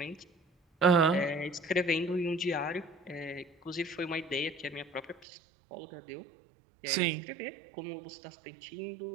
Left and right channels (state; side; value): drops out; left; at 5.2 s